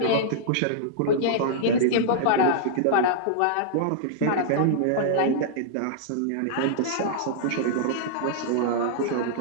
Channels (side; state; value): both; different; correlation -0.02